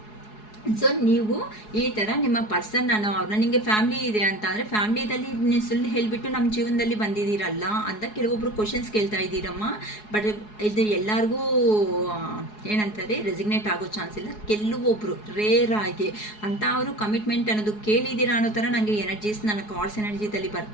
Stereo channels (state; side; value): late; right; 4.7 ms